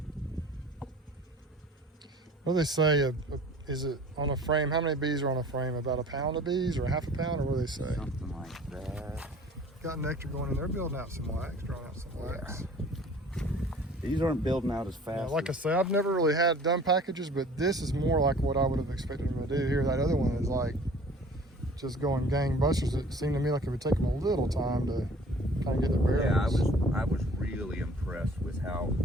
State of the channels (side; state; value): both; normal; correlation 0.49